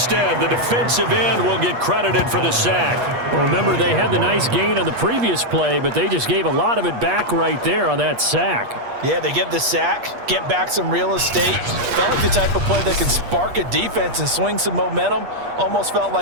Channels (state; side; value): late; left; 8.4 ms